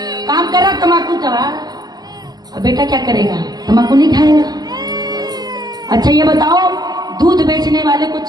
काम कर रहा तम्बाकू दवा, अब बेटा क्या करेगा? तम्बाकू नहीं खाएगा। अच्छा ये बताओ, दूध बेचने वाले को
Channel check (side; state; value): left; late; 0.19 ms